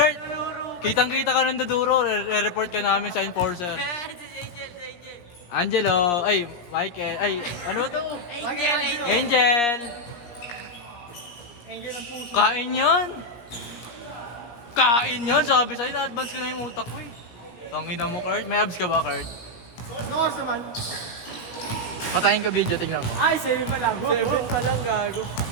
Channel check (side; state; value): right; late; 17 ms